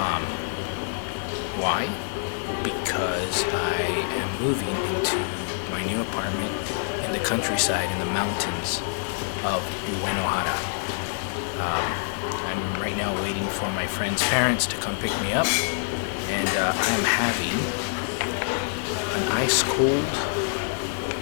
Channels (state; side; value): silent; right; 61 dB below the other